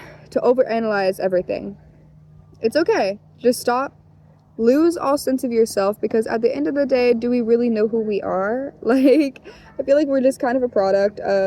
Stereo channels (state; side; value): identical; both; correlation 1.00